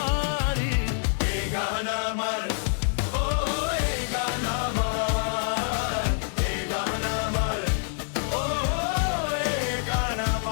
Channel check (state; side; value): silent; right; 61 dB below the other